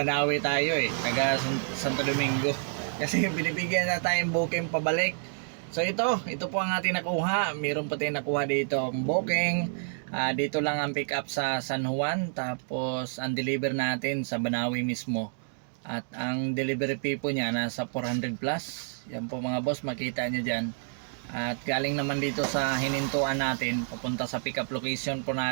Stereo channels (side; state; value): left; silent; digital silence